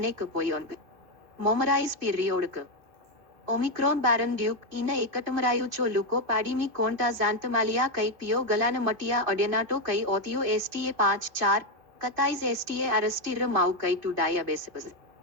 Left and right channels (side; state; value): left; late; 2.6 ms